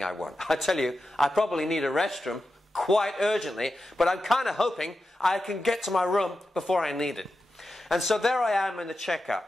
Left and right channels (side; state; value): both; normal; correlation 0.91